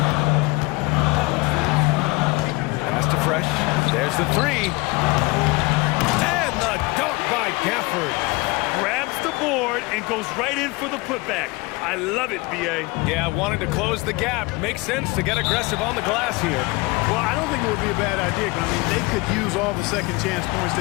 Pass to Fresh. There's the 3. And the dunk by Gafford. Grabs the board and goes right in for the putback. I love it, B.A. Yeah, wanting to close the gap. Makes sense to get aggressive on the glass here. Well, I don't think it would be a bad idea, but I mean, they could use all the second chance points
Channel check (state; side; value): quieter; right; 24.3 dB